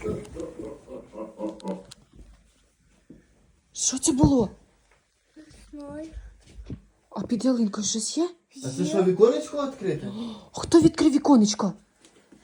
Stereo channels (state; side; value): identical; both; correlation 1.00